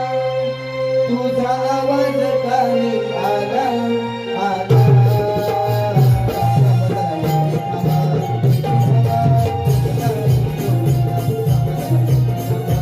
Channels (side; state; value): both; identical; correlation 1.00